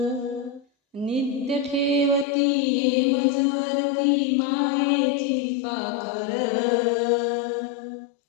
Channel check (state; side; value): drops out; right; at 2.2 s